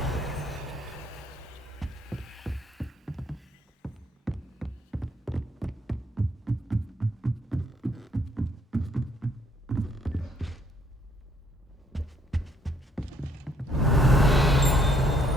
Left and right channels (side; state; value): both; normal; correlation 0.67